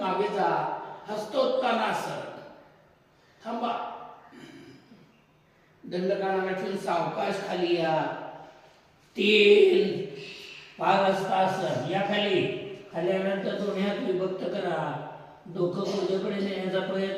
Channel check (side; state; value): both; identical; correlation 1.00